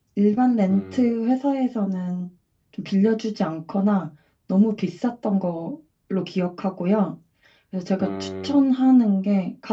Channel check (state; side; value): identical; both; correlation 1.00